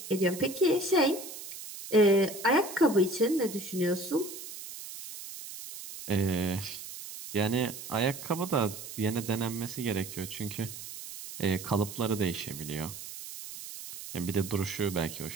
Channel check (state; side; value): noise; right; hiss, 11 dB below the sound